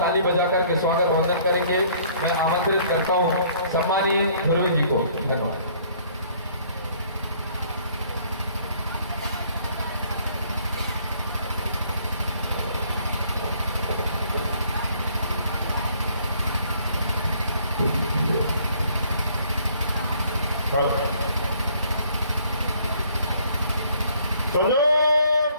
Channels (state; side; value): inverted; both; correlation -0.60